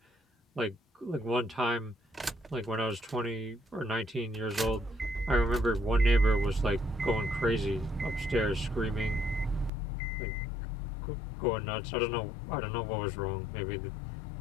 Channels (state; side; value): drops out; right; at 9.7 s